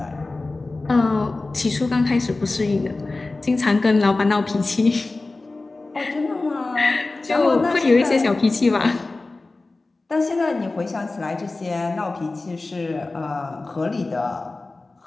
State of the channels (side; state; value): right; quieter; 3.3 dB